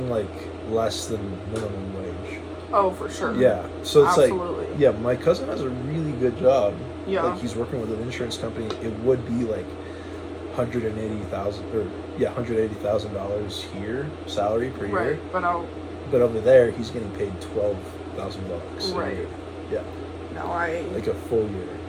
like less than minimum wage. Oh, for sure. Yeah, so it's Absolutely. like, yeah, my cousin has a really good job. Yeah. Like he's working with an insurance company. It would be like $180,000 here salary per year. Right, but I'll. But over there, he's getting paid $12,000. Right. Yeah. No, Like a full year.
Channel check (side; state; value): both; identical; correlation 1.00